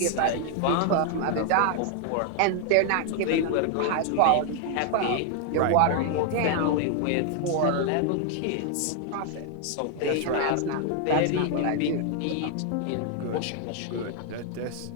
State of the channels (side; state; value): both; different; correlation 0.00